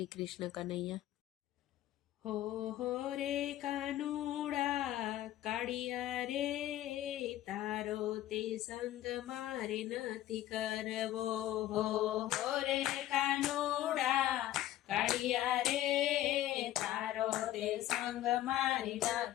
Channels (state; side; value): quieter; right; 13.6 dB